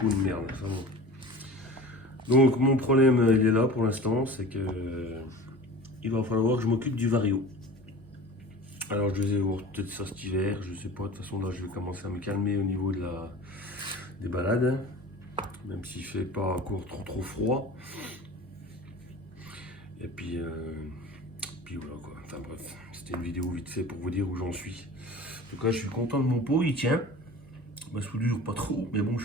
de merde. Enfin bon. Donc mon problème, il est là pour l'instant, c'est que il va falloir que je m'occupe du vario. Alors je vais voir peut-être ça cet hiver, je sais pas, de toute façon là je vais commencer à me calmer au niveau de des balades, même s'il fait pas encore trop froid. Et puis voilà quoi, enfin bref, c'était une vidéo vite fait pour vous dire où j'en suis. En tout cas je suis content de mon pot, il tient. Ma soudure pas trop, mais bon je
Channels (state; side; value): normal; both; correlation 0.38